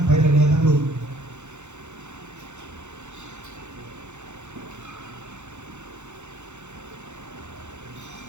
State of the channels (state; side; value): late; left; 0.83 ms